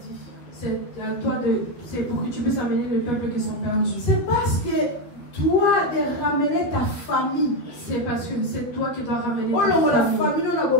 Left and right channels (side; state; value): right; late; 12 ms